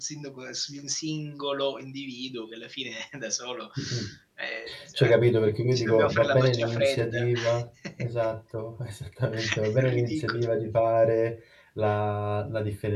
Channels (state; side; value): identical; both; correlation 1.00